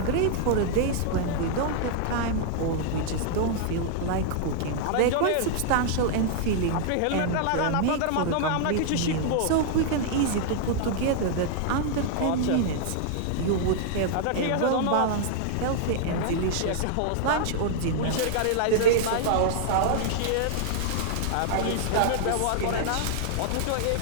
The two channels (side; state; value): both; different; correlation -0.01